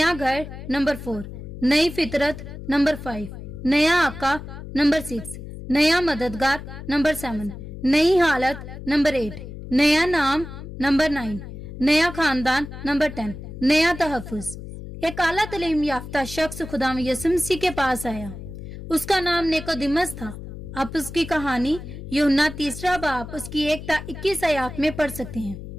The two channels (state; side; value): noise; left; hum, 11 dB below the sound